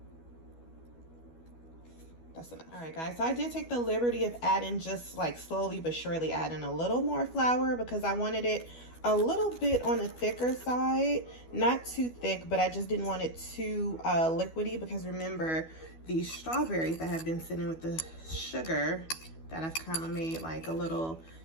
that's enough. All right guys, so I did take the liberty of adding, just like slowly but surely adding a little more flour, because I wanted it a little bit on the thicker side, not too thick, but I just didn't want it too liquidy, because remember, these strawberries that have been sitting with the sugar that I've kind of made like a little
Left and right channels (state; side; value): late; right; 12 ms